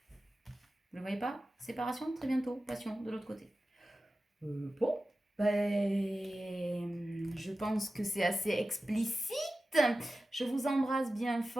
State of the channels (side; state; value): both; normal; correlation 0.94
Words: Vous ne le voyez pas? Séparation, très bientôt. Passion, de l'autre côté. Bon. Je pense que c'est assez explicite. Je vous embrasse bien